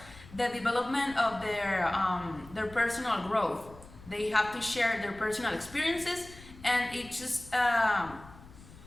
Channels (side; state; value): left; noise; rumble, 19 dB below the sound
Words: the development of their personal growth. They have to share their personal experiences, and it just